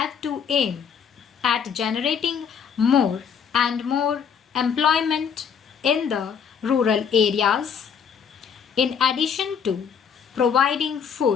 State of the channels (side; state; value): right; quieter; 7.1 dB